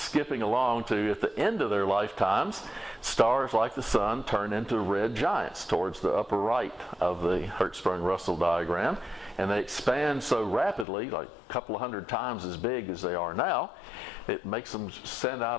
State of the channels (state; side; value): drops out; right; at 10.9 s